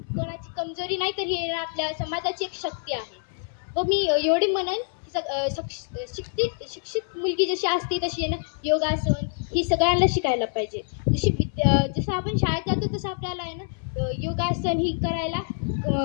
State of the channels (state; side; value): silent; right; 61 dB below the other